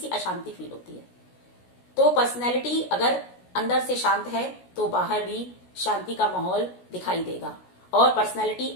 अशांति फील होती है। तो पर्सनैलिटी अगर अंदर से शांत है तो बाहर भी शांति का माहौल दिखाई देगा, और पर्सनैलिटी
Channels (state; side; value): late; right; 16 ms